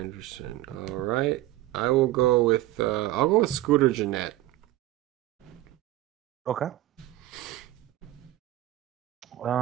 All right. I will go with Scooter Gennett. Okay.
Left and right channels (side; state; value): left; quieter; 15.8 dB